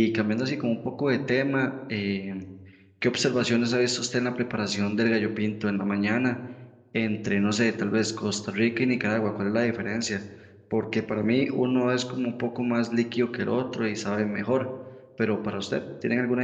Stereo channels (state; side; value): identical; both; correlation 1.00